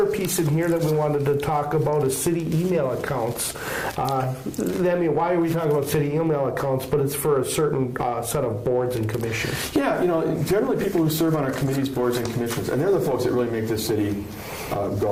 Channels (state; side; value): identical; both; correlation 1.00